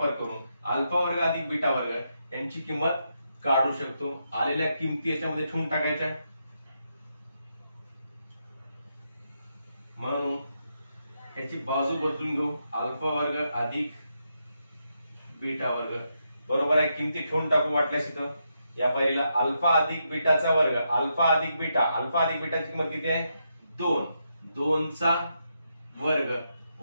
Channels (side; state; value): both; inverted; correlation -0.82